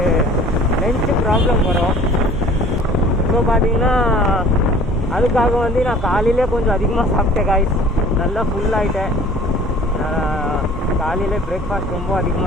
லஞ்சு ப்ராப்ளம் வரும். ஸோ பார்த்தீங்கன்னா அதுக்காக வந்து நான் காலையிலே கொஞ்சம் அதிகமாக சாப்பிட்டேன் காய். நல்லா ஃபுல்லாகிட்டேன். காலையில் பிரேக்ஃபாஸ்ட் ரொம்ப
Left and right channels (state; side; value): normal; both; correlation 0.49